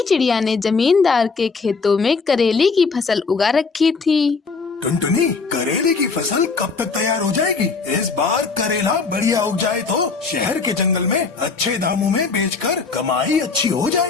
चिड़िया ने जमींदार के खेतों में करेले की फसल उगा रखी थी। टुनटुनी, करेले की फसल कब तक तैयार हो जाएगी? इस बार करेला बढ़िया उग जाए तो शहर के जंगल में अच्छे दामों में बेचकर कमाई अच्छी हो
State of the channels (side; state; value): right; quieter; 4.7 dB